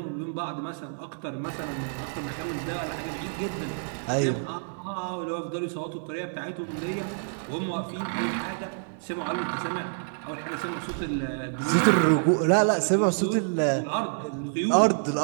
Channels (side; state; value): left; silent; 57 dB below the other